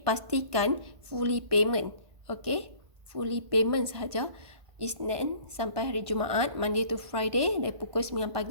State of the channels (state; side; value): late; left; 1.1 ms